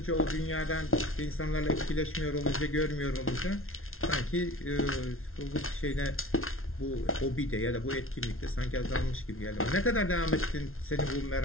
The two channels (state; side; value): late; right; 0.62 ms